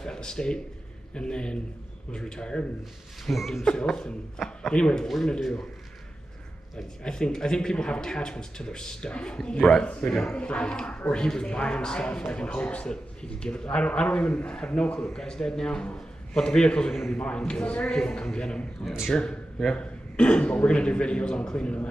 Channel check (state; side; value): normal; both; correlation 0.92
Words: at the state and then was retired and lived in filth. And anyway, what we're going to do, like, I think people have attachments to their stuff. Right. Like, or he was buying stuff like in hopes that he could give it. I don't even have no clue. Guy's dead now, but the vehicles are going to be mine because he won't come get them. Yeah. Sure. Yeah. But we're going to do videos on cleaning them